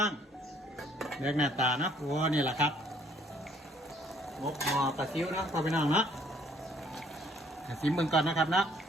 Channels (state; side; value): normal; both; correlation 0.62